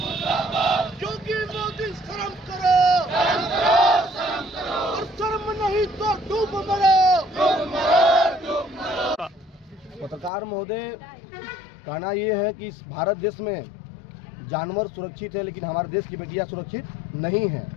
मुर्दाबाद, क्योंकि मोदी शर्म करो, शर्म करो, शर्म करो, और शर्म नहीं तो डूब मरो, डूब मरो, डूब मरो। पत्रकार महोदय, कहना ये है कि इस भारत देश में जानवर सुरक्षित है, लेकिन हमारे देश की बेटियां सुरक्षित नहीं हैं।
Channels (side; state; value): right; drops out; at 10.3 s